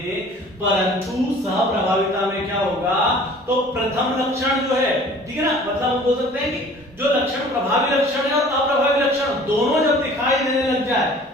परंतु सहप्रभाविता में क्या होगा, तो प्रथम लक्षण जो है, ठीक है ना, मतलब हम बोल सकते हैं कि जो लक्षण प्रभावी लक्षण है और अप्रभावी लक्षण दोनों जब दिखाई देने लग जाए,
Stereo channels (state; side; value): normal; both; correlation 0.49